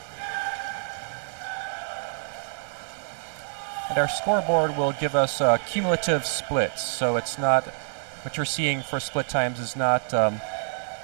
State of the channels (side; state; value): left; silent; 60 dB below the other